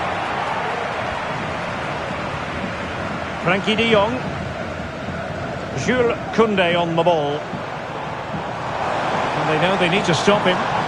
Frenkie de Jong. Jules Koundé on the ball. And they know they need to stop him.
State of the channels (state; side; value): identical; both; correlation 1.00